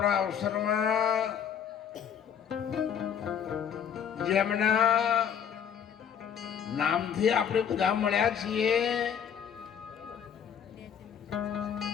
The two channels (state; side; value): quieter; right; 8.1 dB